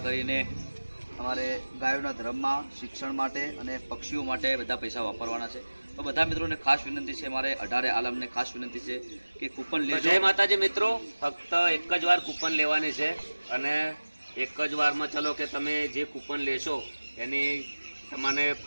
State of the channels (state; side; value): inverted; both; correlation -1.00